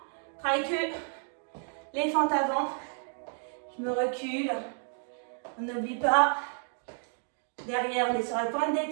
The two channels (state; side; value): silent; left; 57 dB below the other